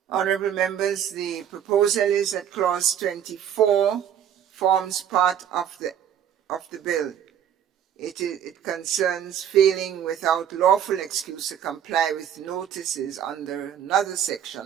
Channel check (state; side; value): quieter; left; 9.5 dB